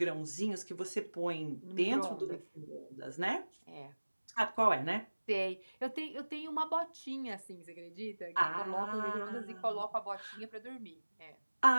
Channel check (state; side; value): inverted; both; correlation -1.00